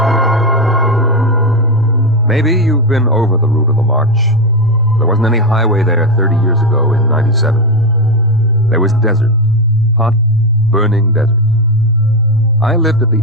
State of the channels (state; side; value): normal; both; correlation 0.10